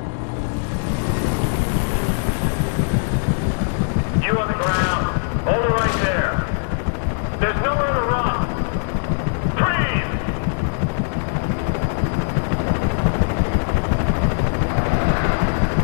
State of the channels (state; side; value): silent; right; digital silence